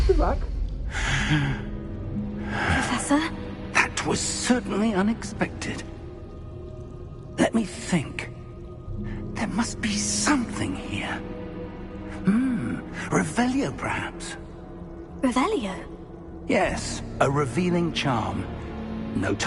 of luck. Professor? That was certainly unexpected. Let me think. There must be something here. Revelio, perhaps? Revelio? Yes, a revealing charm. No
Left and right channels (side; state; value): both; identical; correlation 1.00